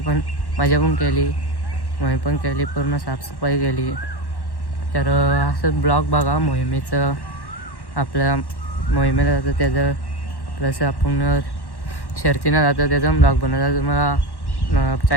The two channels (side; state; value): right; late; 1.1 ms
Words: पण केली मोहीम पण केली पूर्ण साफसफाई केली. तर असं ब्लॉग बघा मोहिमेचं आपल्या मोहिमेला जातं त्याचं प्लस आपण शर्तीनं जातं त्याचा ब्लॉग बनवता तुम्हाला